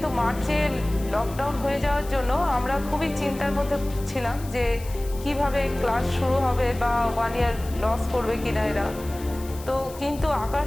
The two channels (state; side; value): noise; left; hiss, 18 dB below the sound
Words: মার্চে লকডাউন হয়ে যাওয়ার জন্য আমরা খুবই চিন্তার মধ্যে ছিলাম যে কিভাবে ক্লাস শুরু হবে বা 1 ইয়ার লস করবে কিনা এরা। তো কিন্তু